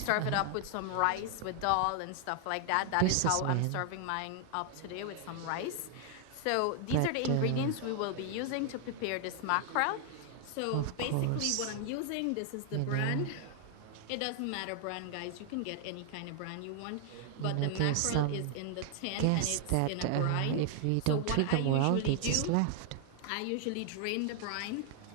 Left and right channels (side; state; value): both; different; correlation 0.00